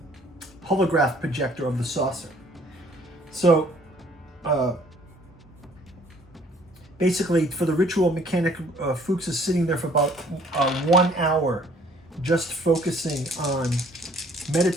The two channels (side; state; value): both; normal; correlation 0.58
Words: holograph projector of the saucer. So basically, for the ritual mechanic, Fuchs is sitting there for about 1 hour, just focusing on